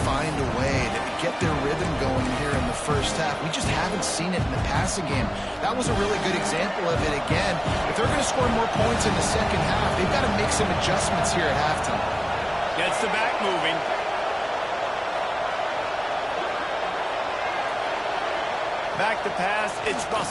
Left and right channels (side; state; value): both; identical; correlation 1.00